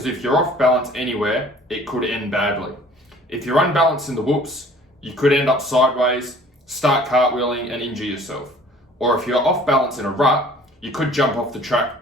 if you're off balance anywhere, it could end badly. If you're unbalanced in the whoops, you could end up sideways, start cartwheeling and injure yourself. Or if you're off balance in a rut, you could jump off the track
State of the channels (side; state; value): both; normal; correlation 0.52